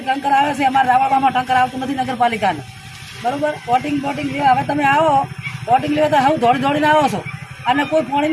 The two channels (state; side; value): identical; both; correlation 1.00